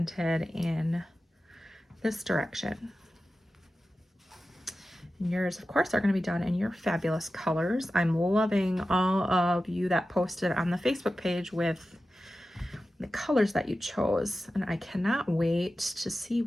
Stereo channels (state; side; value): normal; both; correlation 0.93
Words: in this direction. And yours, of course, are going to be done in your fabulous colors. I'm loving all of you that posted on the Facebook page with the colors that you chose, and I cannot wait to see